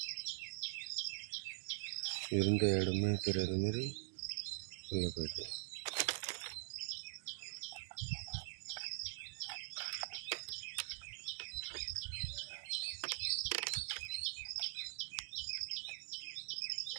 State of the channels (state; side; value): silent; left; digital silence